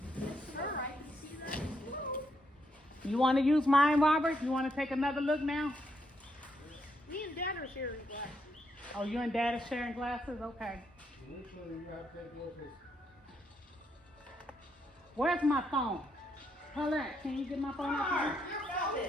Sure, I can see that as well. You want to use mine, Robert? You want to take another look now? Me and Dad are sharing glasses. Oh, you and Dad are sharing glasses? Okay. Where's my phone? Paulette, can you get my phone out here?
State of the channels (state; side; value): normal; both; correlation 0.77